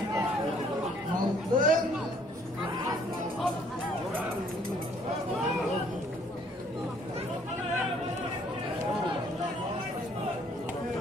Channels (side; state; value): both; normal; correlation 0.62